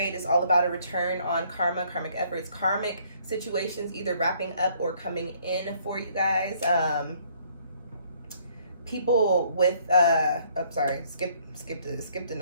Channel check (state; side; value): inverted; both; correlation -0.63